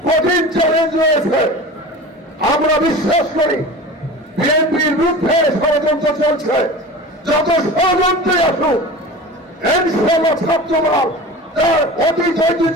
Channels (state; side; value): normal; both; correlation 0.34